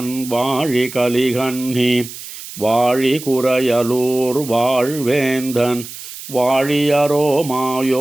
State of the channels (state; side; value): noise; right; hiss, 13 dB below the sound